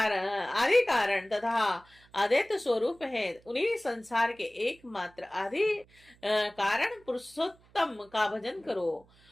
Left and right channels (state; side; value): noise; right; hum, 29 dB below the sound